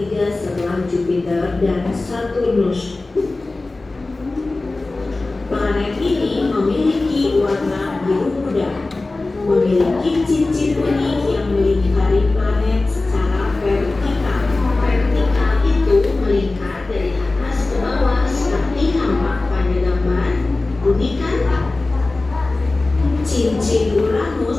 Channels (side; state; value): right; quieter; 3.2 dB